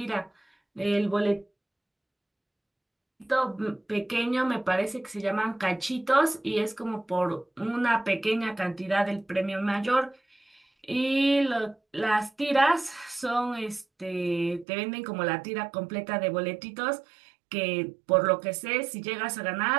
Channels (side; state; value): left; drops out; at 14.7 s